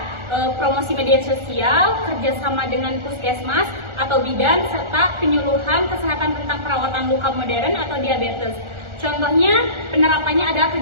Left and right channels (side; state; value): left; late; 1.4 ms